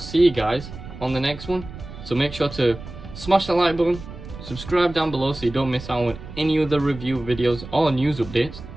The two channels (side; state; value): right; noise; rumble, 13 dB below the sound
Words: you guys on the next one. So make sure to smash the like button, subscribe down below so you don't miss out on any other review videos or news updates,